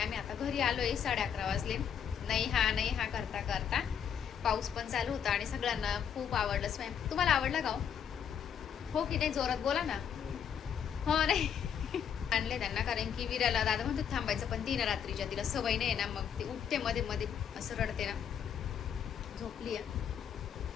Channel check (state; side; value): quieter; right; 8.2 dB